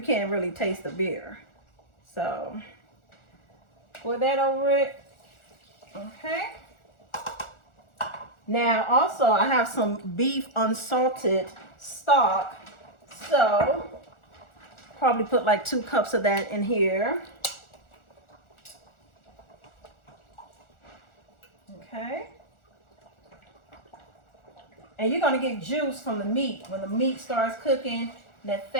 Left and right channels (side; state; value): right; late; 1.4 ms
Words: can't really taste the beer. So pour that over it. Okay. Now also I have some beef unsalted stock. So probably put like 2 cups of that in here. Okay. And you're going to get juice from the meat. When the meat starts cooking, that